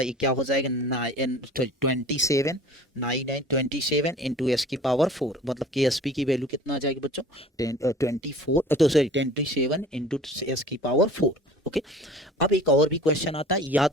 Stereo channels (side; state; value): both; normal; correlation 0.45